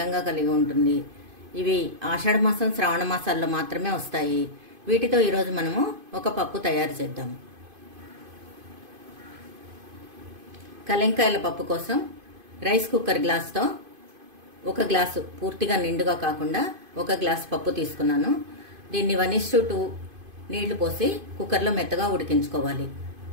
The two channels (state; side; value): late; left; 2.5 ms